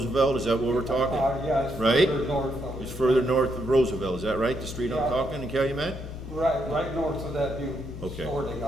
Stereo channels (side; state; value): left; noise; hum, 10 dB below the sound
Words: is that what we're talking? Yeah, it's Right? further north of it. It's further north of Roosevelt, is that right, the street I'm Yeah. talking in Calumet? Right north of that new Okay. store they